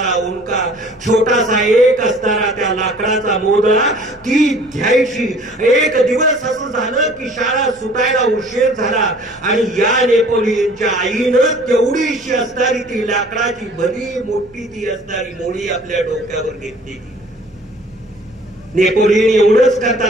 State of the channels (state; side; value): noise; right; rumble, 28 dB below the sound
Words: उंका, छोटासा एक असणारा त्या लाकडाचा मोदळा ती घ्यायची. एक दिवस असं झालं की शाळा सुटायला उशीर झाला आणि या नेपोलियनच्या आईनं तेवढीशी असणारी ती लाकडाची भली मोठी ती असणारी मोळी आपल्या डोक्यावर घेतली. नेपोलियन एवढंच